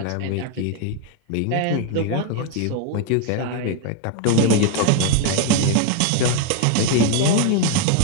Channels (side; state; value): both; different; correlation 0.01